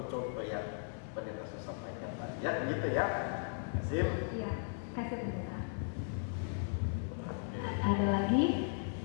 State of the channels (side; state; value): right; silent; digital silence